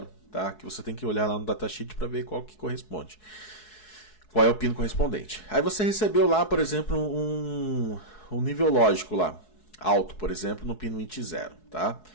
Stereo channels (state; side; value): late; right; 4.7 ms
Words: tá? Que você tem que olhar lá no datasheet para ver qual que corresponde. Qual é o pino correspondente. Aí você recebeu lá, por exemplo, um nível lógico lá, alto, por exemplo, no pino int0, tá?